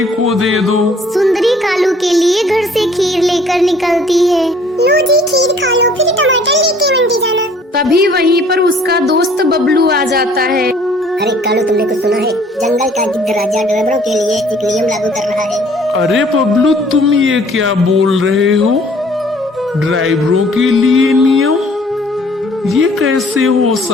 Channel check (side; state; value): both; normal; correlation 0.56